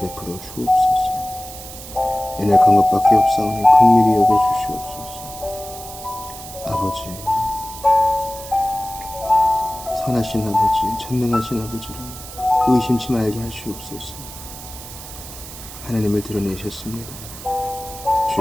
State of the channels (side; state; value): right; noise; hiss, 13 dB below the sound